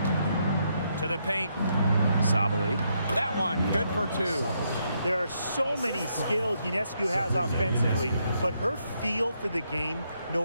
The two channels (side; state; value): both; inverted; correlation -0.77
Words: To the paint. Sabali. That one, good for 2. There are so many skills Ionescu has offensively, but her feel for the game,